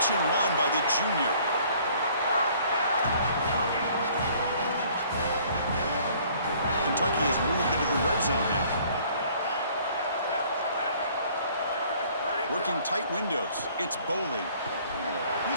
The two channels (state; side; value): inverted; both; correlation -0.57